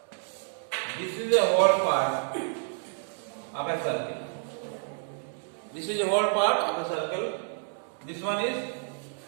this is a whole part of a circle. This is a whole part of a circle. This one is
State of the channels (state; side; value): silent; left; 58 dB below the other